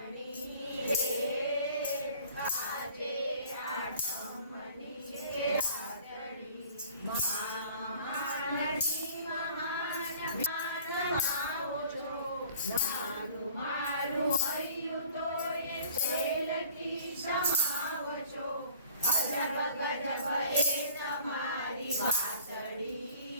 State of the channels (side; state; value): both; inverted; correlation -0.50